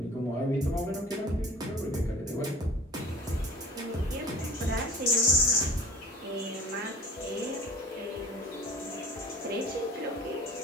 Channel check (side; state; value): both; normal; correlation 0.43